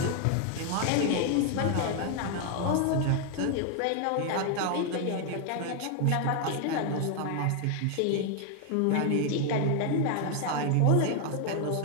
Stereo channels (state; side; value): different; both; correlation 0.00